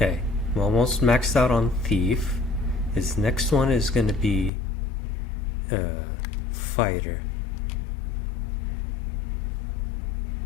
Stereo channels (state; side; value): drops out; right; at 4.5 s